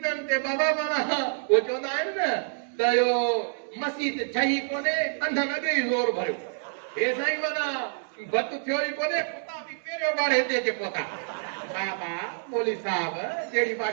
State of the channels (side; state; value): left; silent; digital silence